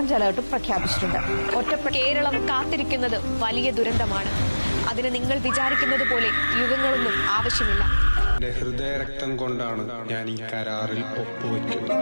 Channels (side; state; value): both; inverted; correlation -1.00